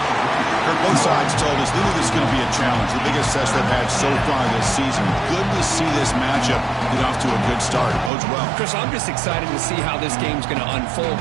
Kirk, both sides told us they knew this is going to be a challenge, the biggest test they've had so far this season. Good to see this matchup get off to a good start. Bodes well. Chris, I'm just excited to see how this game's going to unfold.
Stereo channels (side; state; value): left; drops out; at 8.1 s